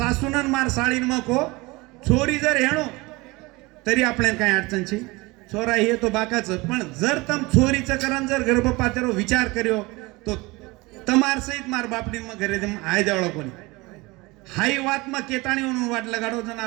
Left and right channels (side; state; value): left; quieter; 23.3 dB